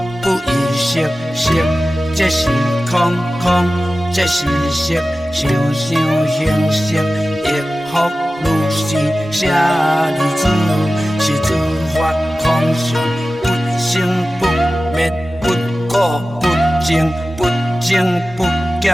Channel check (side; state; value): both; normal; correlation 0.95